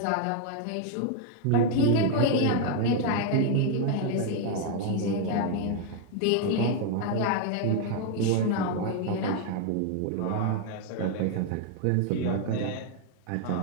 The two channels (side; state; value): both; different; correlation 0.00